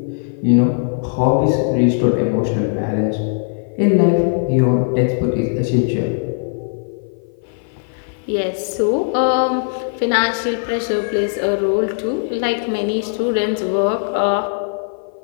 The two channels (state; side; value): silent; right; 56 dB below the other